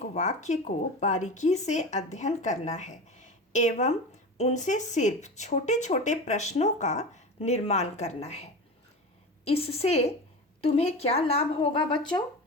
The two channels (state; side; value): normal; both; correlation 0.28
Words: वाक्य को बारीकी से अध्ययन करना है एवं उनसे सिर्फ छोटे छोटे प्रश्नों का निर्माण करना है। इससे तुम्हें क्या लाभ होगा बच्चों?